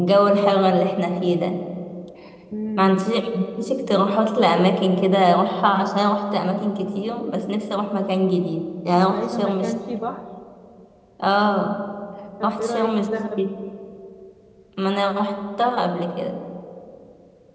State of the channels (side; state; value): both; identical; correlation 1.00